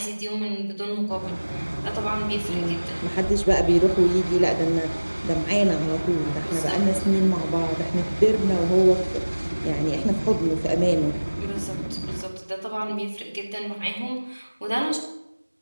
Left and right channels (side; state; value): both; inverted; correlation -1.00